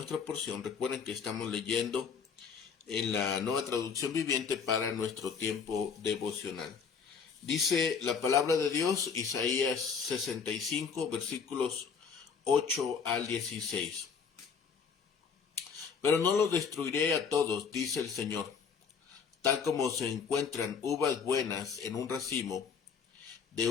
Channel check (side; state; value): right; quieter; 6.1 dB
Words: porción. Recuerden que estamos leyendo en la Nueva Traducción Viviente para nuestro tiempo devocional. Dice la palabra de Dios, Isaías 65, versículos 8 al 16. Pero no los destruiré a todos, dice el Señor. Tal como se encuentran uvas buenas en un racimo de